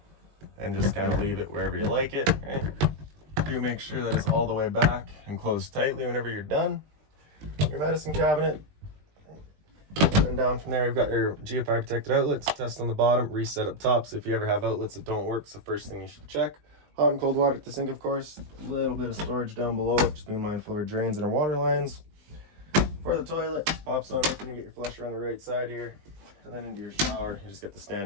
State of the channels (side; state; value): left; late; 20 ms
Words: and just kind of leave it wherever you like it, right? Do make sure that it's all the way back and closed tightly whenever you're done. Your medicine cabinet. And down from there, you've got your GFI protected outlets, test on the bottom, reset up top. So if you ever have outlets that don't work, it's the first thing you should check. Hot and cold water at the sink, of course. A little bit of storage down below it. Just be mindful of our drains and our water lines. For the toilet, pops on open, you get your flusher on the right side here. And then into your shower, you just get the